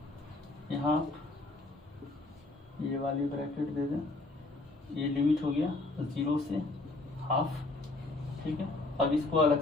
यहाँ, ये वाली ब्रैकेट दे दें, ये लिमिट हो गया 0 से हाफ, ठीक है। अब इसको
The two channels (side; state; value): right; quieter; 3.1 dB